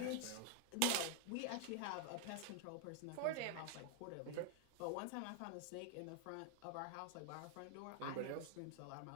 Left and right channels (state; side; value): different; both; correlation 0.00